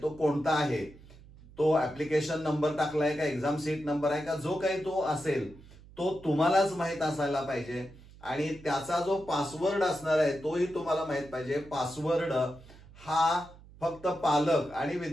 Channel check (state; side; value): noise; right; hum, 21 dB below the sound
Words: कोणता आहे, तो ऍप्लिकेशन नंबर टाकलाय का, एक्झाम सीट नंबर आहे का, जो काही तो असेल तो तुम्हालाच माहित असायला पाहिजे. आणि त्याचा जो पासवर्ड असणार आहे तोही तुम्हाला माहित पाहिजे. पासवर्ड हा फक्त पालक आणि